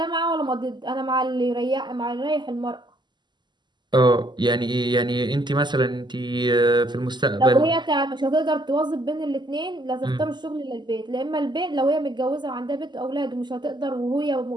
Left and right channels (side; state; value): left; late; 0.21 ms